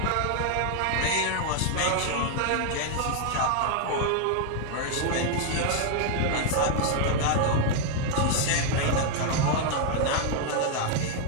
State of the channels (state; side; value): different; both; correlation 0.00